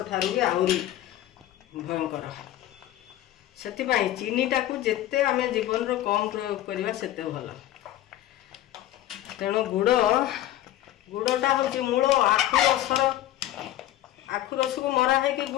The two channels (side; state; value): right; quieter; 13.7 dB